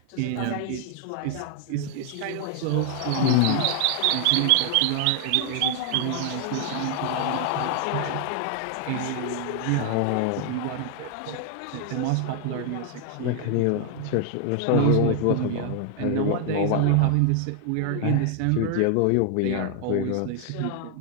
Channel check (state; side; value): different; both; correlation 0.00